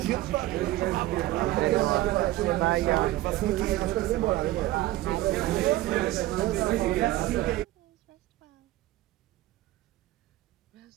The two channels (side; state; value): left; quieter; 16.3 dB